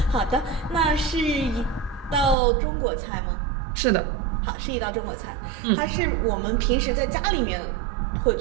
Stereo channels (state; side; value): drops out; left; at 2.4 s